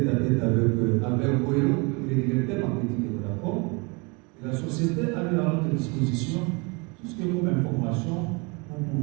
à tête avec Albert Boyo, le directeur marketing de Vodacom. Et la société a mis à notre disposition tout ce qui est comme information pour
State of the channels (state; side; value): quieter; left; 29.6 dB